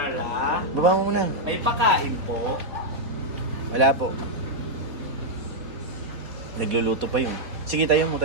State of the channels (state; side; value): late; left; 4.1 ms